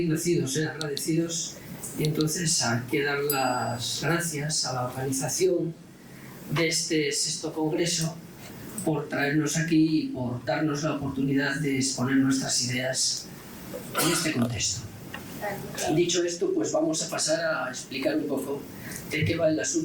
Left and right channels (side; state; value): both; identical; correlation 1.00